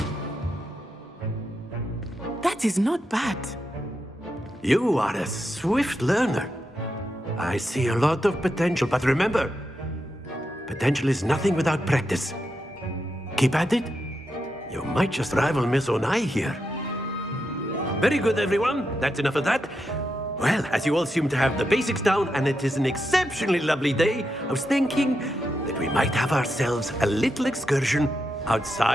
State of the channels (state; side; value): normal; both; correlation 0.85